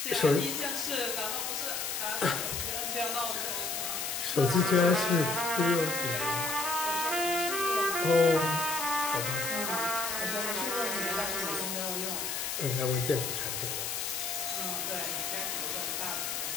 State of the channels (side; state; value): left; noise; hiss, 2 dB below the sound